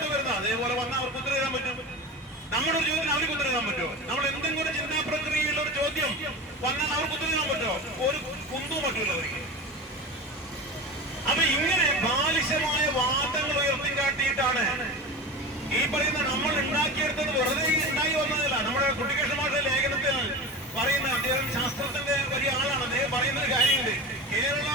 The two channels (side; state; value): both; normal; correlation 0.29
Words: വരുന്നത്. അതേപോലെ വന്നാൽ അവർക്ക് ഉത്തരം എഴുതാൻ പറ്റും. നമ്മുടെ ഒരു ചോദ്യം അവർക്ക് ഉത്തരം എഴുതാൻ പറ്റുമോ? നമ്മൾ എന്തെങ്കിലും ഒരു ചിന്താ പ്രക്രിയയുള്ള ഒരു ചോദ്യം വന്നാൽ അവർക്ക് ഉത്തരം എഴുതാൻ പറ്റുമോ? ഒരു കുന്തവും പറ്റൂല അവർക്ക്. അപ്പൊ ഇങ്ങനെ ബാലിശമായ വാദങ്ങൾ ഉയർത്തിക്കാട്ടിയിട്ടാണ് ഈ പറയുന്ന നമ്മൾ ഉണ്ടാക്കിയെടുത്തത്. വെറുതെ ഉണ്ടായി വന്നതല്ല. നമ്മുടെ കുട്ടികൃഷ്ണ മാഷ ലേഖനത്തിൽ പറയുന്ന, അദ്ദേഹം ശാസ്ത്രത്തിന്റെ വലിയ ആളാണ്. അദ്ദേഹം പറയുന്ന ഒരു കാര്യമുണ്ട്. കേരള